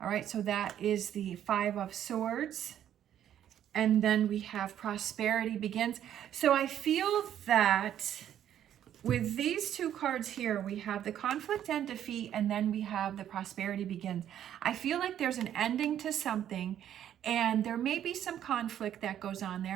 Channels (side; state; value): left; quieter; 10.6 dB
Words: right, so that is the Five of Swords. And then we have prosperity begins. So I feel that with these two cards here, we have the conflict and defeat, and then we have the prosperity begins. I feel like there's an ending to something, and there may be some conflict that goes on